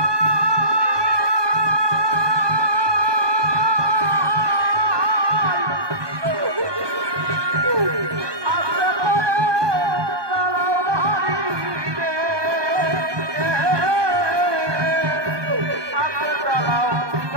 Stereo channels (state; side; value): late; left; 1.2 ms